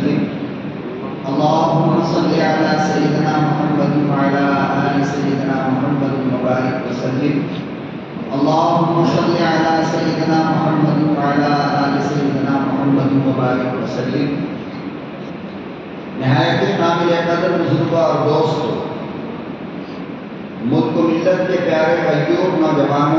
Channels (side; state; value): both; identical; correlation 1.00